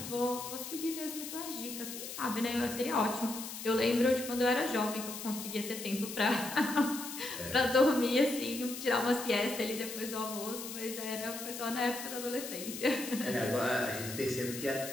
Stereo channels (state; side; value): noise; left; hiss, 8 dB below the sound